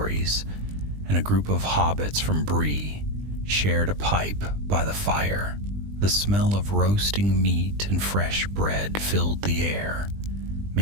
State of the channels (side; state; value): left; late; 20 ms